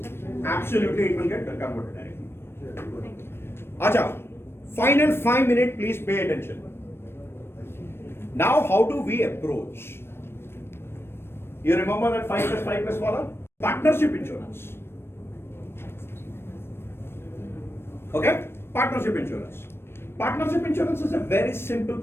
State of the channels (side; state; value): right; late; 0.12 ms